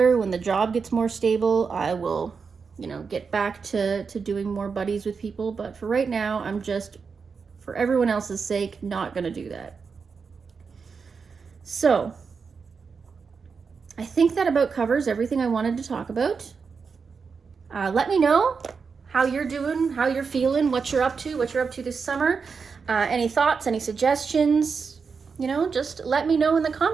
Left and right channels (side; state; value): left; quieter; 5.4 dB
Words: when the job gets more stable, I will, you know, get back to doing more buddies with people. But for right now, I'm just, for everyone else's sake, not gonna do that. So I think that about covers everything I wanted to talk about. Let me know how you're doing, how you're feeling, what you're up to this summer. Any thoughts, any suggestions, you know, just let me know in the